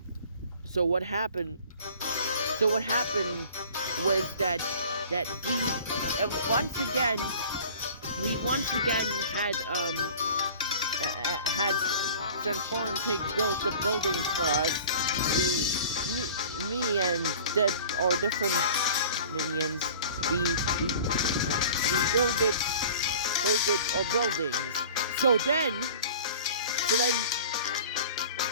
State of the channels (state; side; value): inverted; both; correlation -0.44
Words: what happened? So what happened was that we once again had Transform Pig build the buildings for us. Me and our different minions, we build our buildings. So then